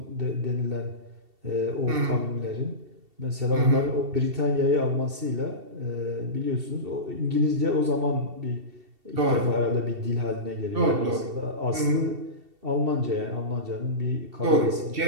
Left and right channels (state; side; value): late; left; 2.7 ms